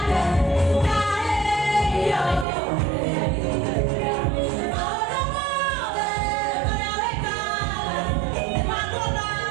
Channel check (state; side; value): drops out; left; at 2.5 s